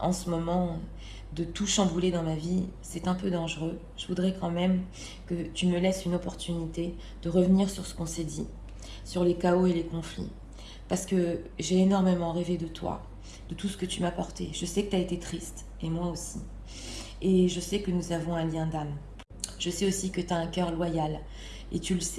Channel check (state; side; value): identical; both; correlation 1.00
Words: ce moment, de tout chambouler dans ma vie, c'est un peu dangereux. Je voudrais quand même que tu me laisses une opportunité de revenir sur ce qu'on s'est dit, sur les chaos et les conflits. Parce que j'ai énormément rêvé de toi, de tout ce que tu m'as apporté. Je sais que tu as été triste, et moi aussi. Et je sais que nous avons un lien d'âme. Je sais aussi que tu as un cœur loyal. Et tu le